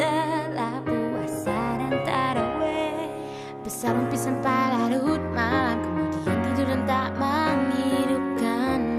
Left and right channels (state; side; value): identical; both; correlation 1.00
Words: puasa dan taraweh, bersarung pisan larut malam, kemudian tidur dan tak menghidupkan